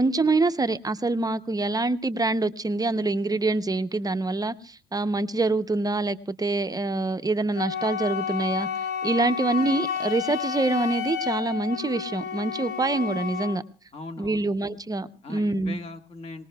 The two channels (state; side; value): normal; both; correlation 0.63